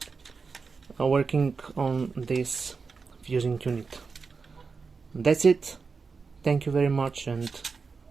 working on this fusing unit. That's it. Thank you very much and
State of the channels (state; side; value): quieter; left; 4.8 dB